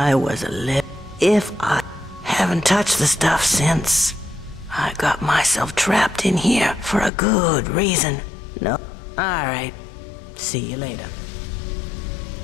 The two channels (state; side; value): drops out; right; at 7.1 s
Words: a little... If I haven't touched the stuff since, I got myself trapped in here for a good reason. No? Alright. See you later.